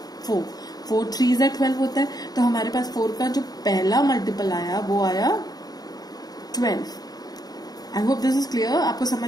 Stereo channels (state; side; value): late; right; 0.19 ms